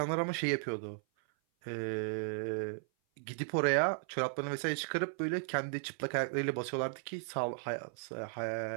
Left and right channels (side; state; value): left; silent; 54 dB below the other